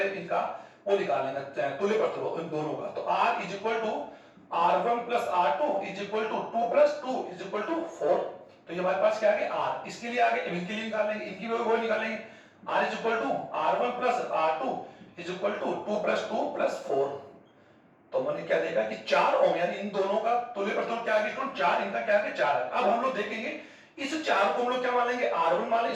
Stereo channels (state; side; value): identical; both; correlation 1.00